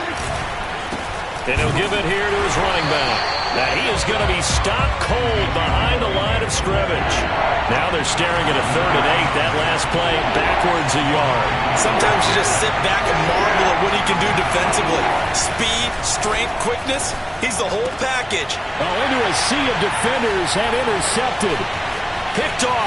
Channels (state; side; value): identical; both; correlation 1.00